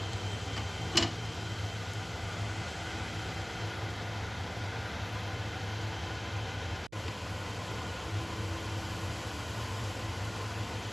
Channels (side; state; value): right; noise; hum, 23 dB below the sound